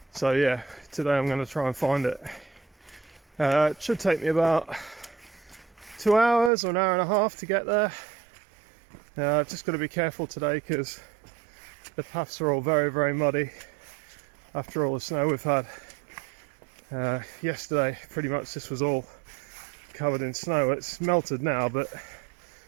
So yeah, today I'm going to try and find it. It should take me about 2 hours or an hour and a half to get there. I've just got to be careful today because the paths are all very muddy after all the snow we've had. Yesterday pretty much this was all covered in snow. It's melted now, but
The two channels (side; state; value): left; drops out; at 6.5 s